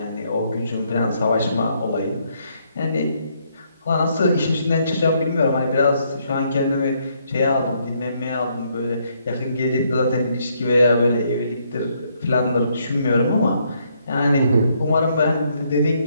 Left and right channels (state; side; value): inverted; both; correlation -0.72